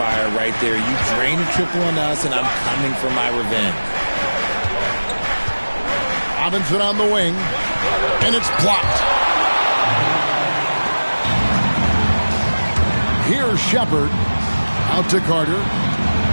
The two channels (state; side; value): inverted; both; correlation -1.00